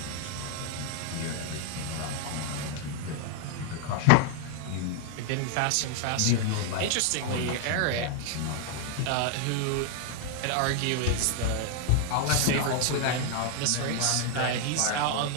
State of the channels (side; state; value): both; different; correlation 0.00